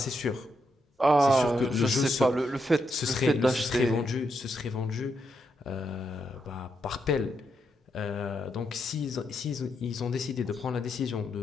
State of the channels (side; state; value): both; normal; correlation 0.81